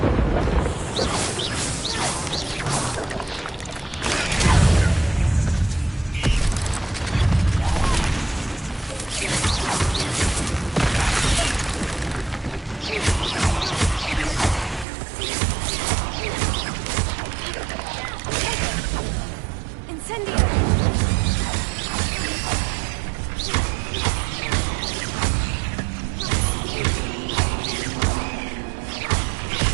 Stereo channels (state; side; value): drops out; left; at 14.9 s